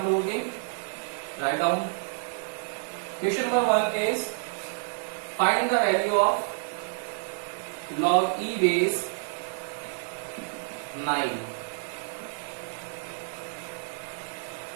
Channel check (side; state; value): left; silent; digital silence